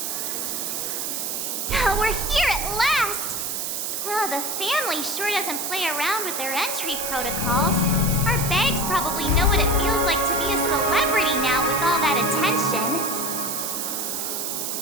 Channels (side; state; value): right; noise; hiss, 2 dB below the sound